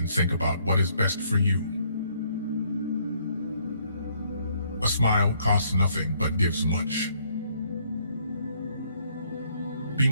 think about what is best for you. A smile costs nothing but gives much. Be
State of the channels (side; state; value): both; inverted; correlation -0.67